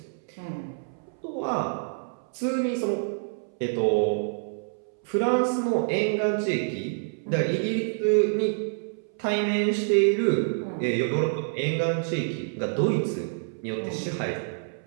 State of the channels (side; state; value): left; silent; 60 dB below the other